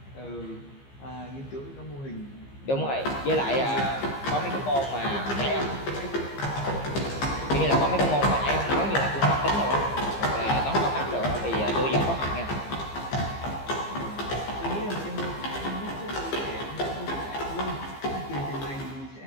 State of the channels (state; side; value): late; right; 15 ms